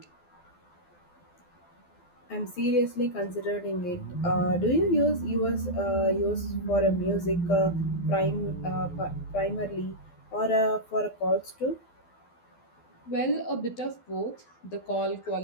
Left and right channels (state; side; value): late; right; 12 ms